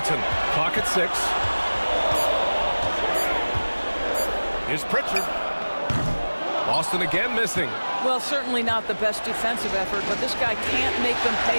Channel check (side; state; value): both; inverted; correlation -1.00